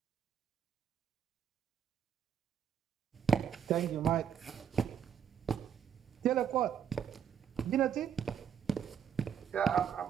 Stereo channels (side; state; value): left; quieter; 8.4 dB